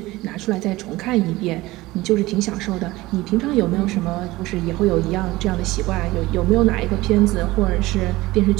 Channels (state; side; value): quieter; left; 19.1 dB